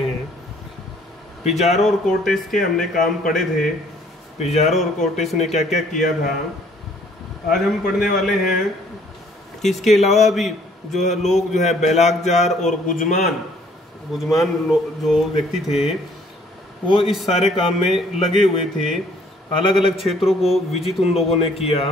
हैं। पिजारो और कोर्टेस के हमने काम पढ़े थे, पिजारो और कोर्टेस ने क्या क्या किया था। आज हम पढ़ने वाले हैं कि इसके अलावा भी जो है लोग जो है बेलागजार और गुजमान जो व्यक्ति थे वो इस सारे काम में लगे हुए थे। अलग अलग क्षेत्रों को विजिट उन लोगों ने किया।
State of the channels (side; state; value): both; normal; correlation 0.60